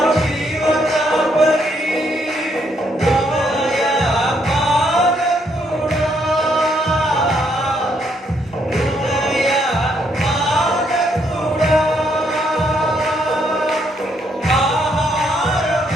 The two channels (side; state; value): both; normal; correlation 0.73